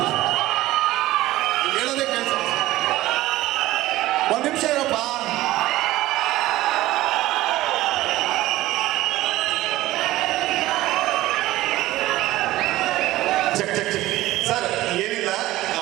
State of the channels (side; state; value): left; quieter; 16.5 dB